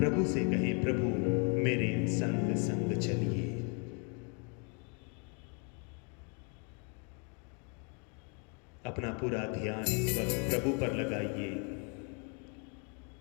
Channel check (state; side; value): quieter; right; 36.8 dB